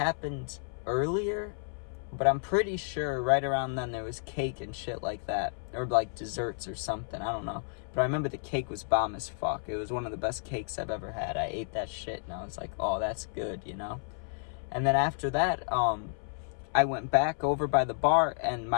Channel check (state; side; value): silent; right; 57 dB below the other